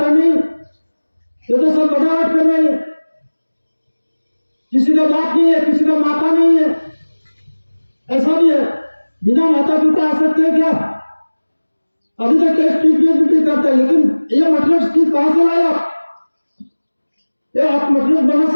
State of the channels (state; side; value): inverted; both; correlation -1.00